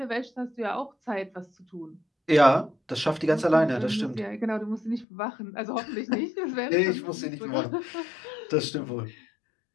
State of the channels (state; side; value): drops out; right; at 5.1 s